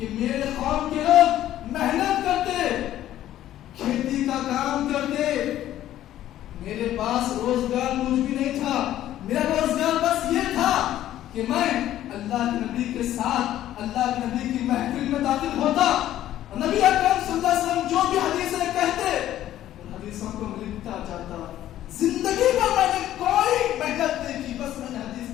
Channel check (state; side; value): quieter; right; 12.8 dB